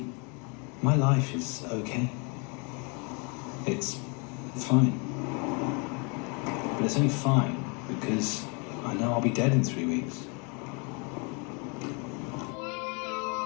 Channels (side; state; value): right; quieter; 33.4 dB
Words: my life is okay. It's fine. But it's only fine because I know I'll be dead in 3 weeks.